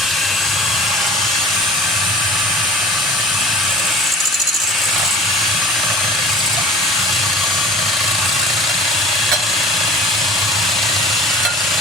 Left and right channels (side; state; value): both; normal; correlation 0.44